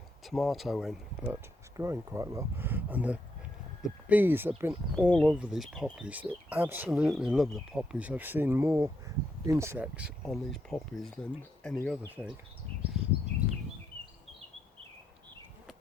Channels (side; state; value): both; normal; correlation 0.79